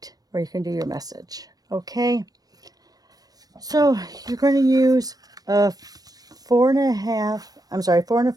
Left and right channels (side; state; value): left; late; 0.18 ms